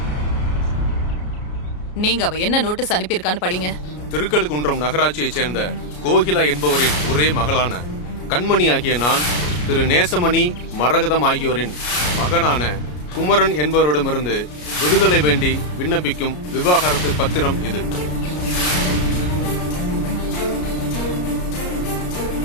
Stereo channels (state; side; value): late; right; 33 ms